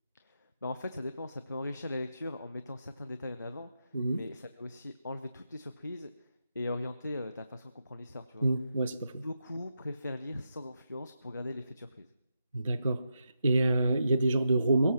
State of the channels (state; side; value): inverted; both; correlation -0.84